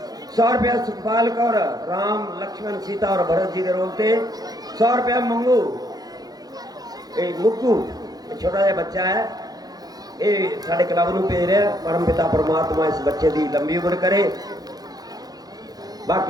100 रुपया सुखपाल कौर राम लक्ष्मण सीता और भरत जी के रोल से। 100 रुपया मंगू मुक्कू छोटा जहा बच्चा है, ये साढ़े क्लब में भेज रहा। परम पिता परमात्मा इस बच्चे की लंबी उम्र करे।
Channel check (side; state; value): left; late; 0.19 ms